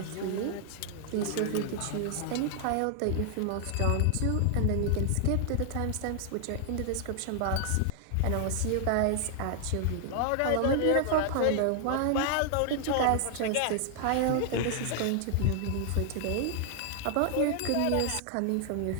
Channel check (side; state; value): both; different; correlation 0.00